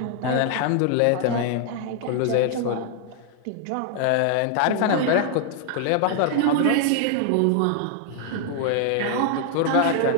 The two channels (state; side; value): different; both; correlation 0.00